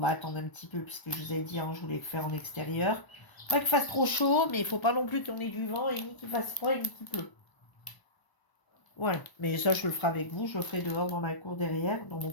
attendre un petit peu, puisque je vous ai dit, hein, je voulais le faire en extérieur. Pas qu'il fasse trop chaud, mais il faut pas non plus qu'on ait du vent, et ni qu'il fasse froid, ni qu'il pleut. Voilà, mais ça je le ferai avec vous, je le ferai dehors dans ma cour derrière, dans mon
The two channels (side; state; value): right; late; 1.0 ms